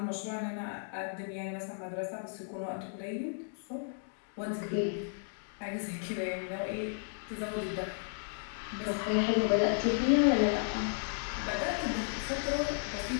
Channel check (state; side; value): silent; right; digital silence